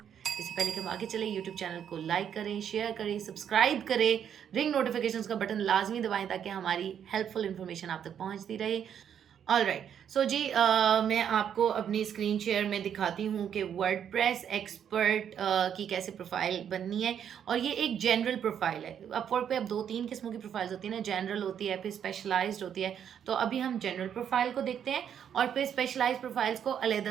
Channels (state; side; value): quieter; left; 8.8 dB